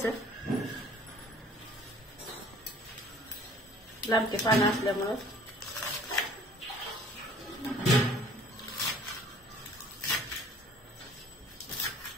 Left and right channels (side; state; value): both; normal; correlation 0.52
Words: लांबके पानं असल्यामुळं